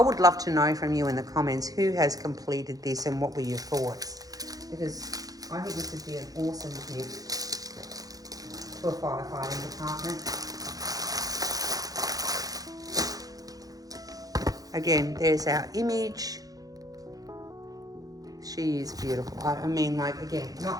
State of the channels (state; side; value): late; left; 0.18 ms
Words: would love to know from you in the comments who has completed this and what were your thoughts, because I think this would be an awesome gift to a firefighting department. Again, there's our image. She is beautiful. I mean, like, again,